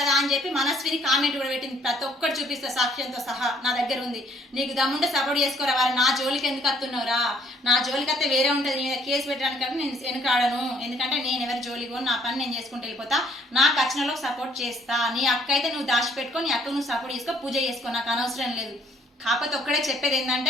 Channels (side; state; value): both; normal; correlation 0.63